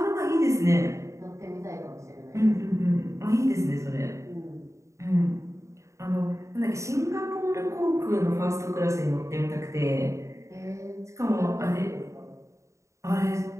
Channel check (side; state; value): left; late; 0.14 ms